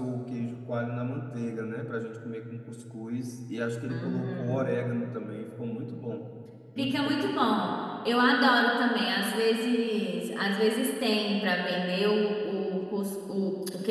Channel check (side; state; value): both; identical; correlation 1.00